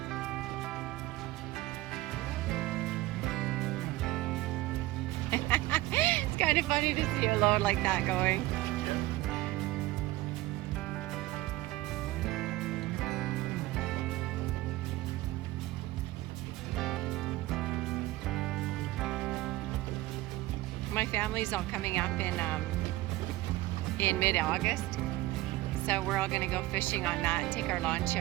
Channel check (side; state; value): left; quieter; 18.0 dB